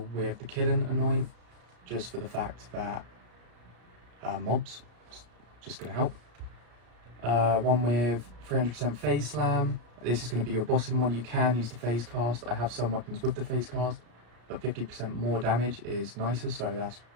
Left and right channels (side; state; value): left; late; 34 ms